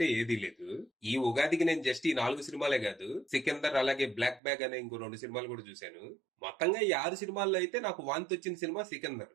ఏదీ లేదు. ఈ ఉగాదికి నేను జస్ట్ ఈ 4 సినిమాలే కాదు, సికిందర్ అలాగే బ్లాక్ బ్యాగ్ అనే ఇంకో 2 సినిమాలు కూడా చూశాను. మొత్తంగా ఈ 6 సినిమాల్లో అయితే నాకు వాంతి వచ్చిన సినిమా సికిందర్.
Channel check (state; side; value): drops out; left; at 4.4 s